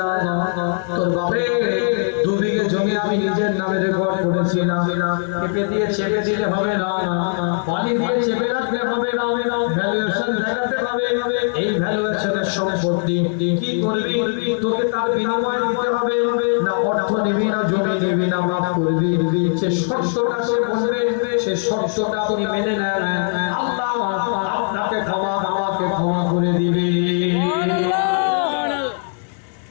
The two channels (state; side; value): silent; right; 56 dB below the other